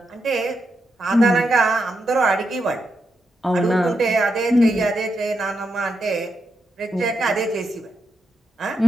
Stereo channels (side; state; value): both; normal; correlation 0.84